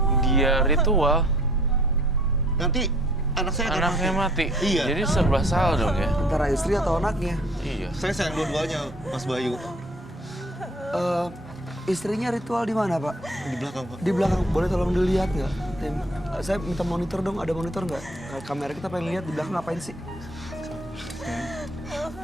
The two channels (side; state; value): both; normal; correlation 0.55